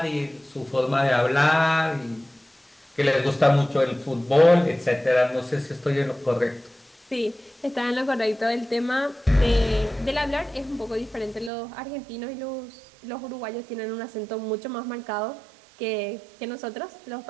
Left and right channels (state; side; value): drops out; left; at 11.5 s